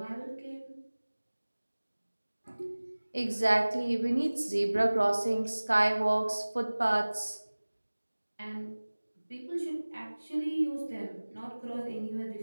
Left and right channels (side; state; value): both; inverted; correlation -1.00